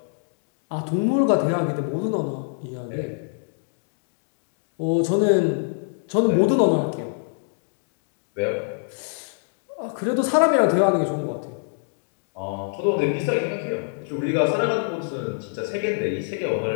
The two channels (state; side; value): silent; right; digital silence